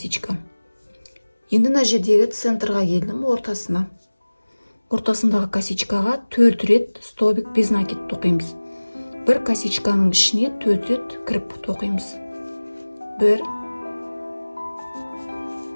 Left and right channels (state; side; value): inverted; both; correlation -1.00